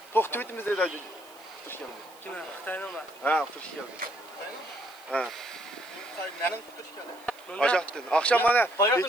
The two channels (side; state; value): right; noise; hiss, 25 dB below the sound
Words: To'xtab etimiz deydi. Xush keldi. Kim? Xitoynimi? Ha, xush keldi. Ha. Mening xush keldi. Aşaktın. Akşam bana